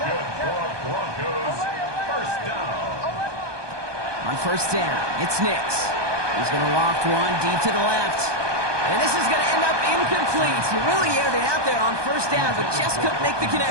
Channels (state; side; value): late; left; 1.2 ms